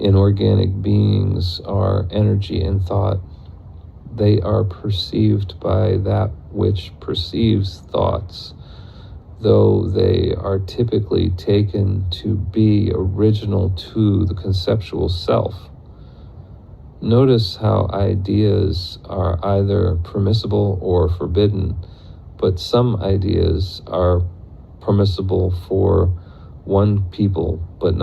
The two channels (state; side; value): identical; both; correlation 1.00